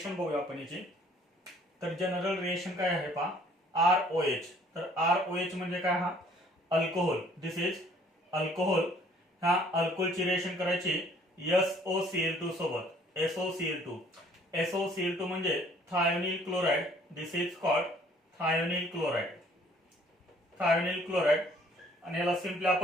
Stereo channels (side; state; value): both; normal; correlation 0.59